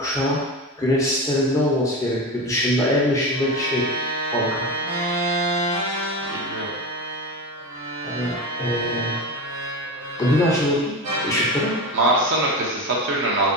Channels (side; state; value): both; normal; correlation 0.23